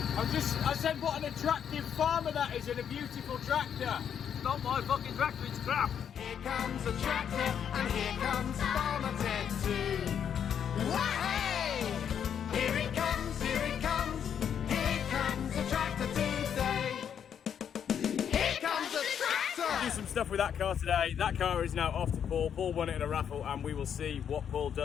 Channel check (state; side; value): quieter; right; 8.4 dB